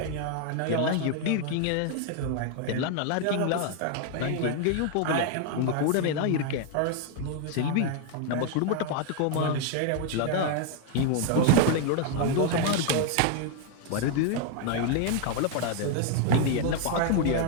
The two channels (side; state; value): both; different; correlation 0.00